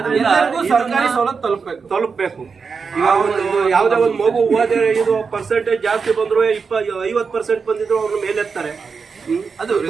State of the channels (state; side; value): quieter; left; 5.3 dB